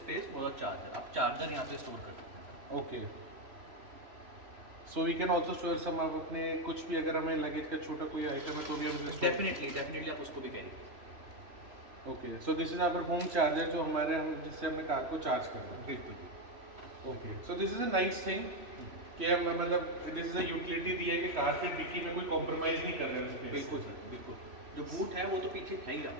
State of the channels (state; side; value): late; left; 3.0 ms